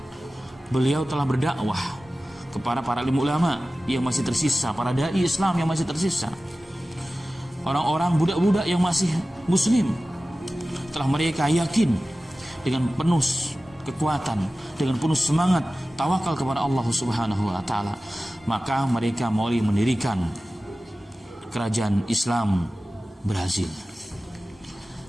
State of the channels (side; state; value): both; normal; correlation 0.96